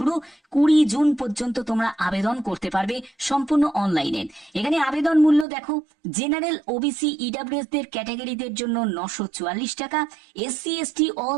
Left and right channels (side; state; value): left; drops out; at 5.5 s